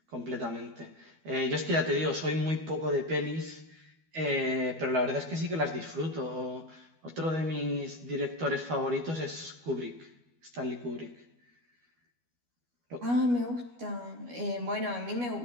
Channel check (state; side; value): late; left; 12 ms